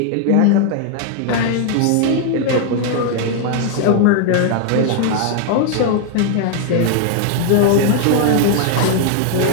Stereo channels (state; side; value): different; both; correlation 0.00